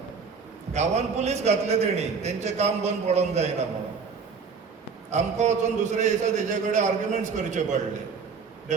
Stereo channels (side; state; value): left; quieter; 5.4 dB